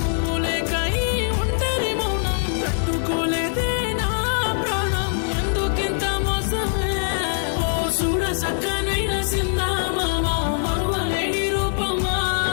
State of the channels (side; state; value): right; silent; digital silence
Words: లేక ఈ ఒంటరి మౌనం తట్టుకోలేదే నా ప్రాణం ఎందుకింత మోసమే ఓ చూడ సక్కనైన సిందామా మరువలేని రూపమా